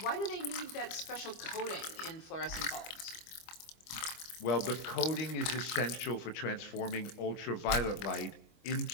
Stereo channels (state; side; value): late; right; 25 ms